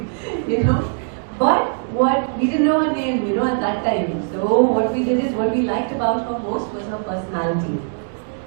But what we didn't know her name, at that time. So what we did is, what we liked about her most was her personality.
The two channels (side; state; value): left; silent; 65 dB below the other